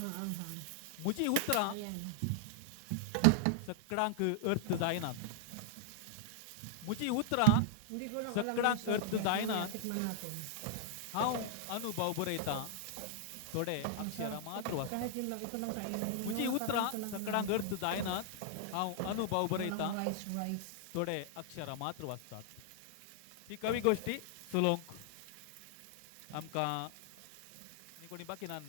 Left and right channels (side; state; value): both; different; correlation -0.01